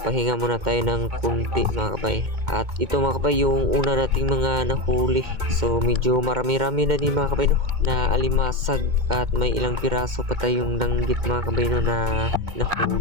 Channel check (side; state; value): left; late; 2.1 ms